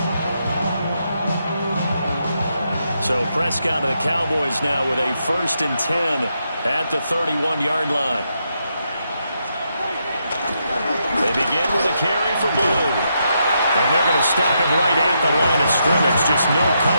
line. So Prescott and the Cowboys now with a first and 10 at the 31-yard line. They begin with a carry for Blue. And they're going to stop him right at the line of scrimmage. Just no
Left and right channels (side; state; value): both; inverted; correlation -0.81